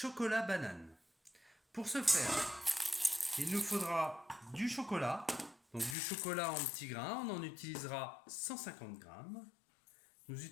banane. Pour ce faire, il nous faudra du chocolat, donc du chocolat en petits grains, on en utilisera 150 grammes. Nous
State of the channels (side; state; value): right; drops out; at 6.0 s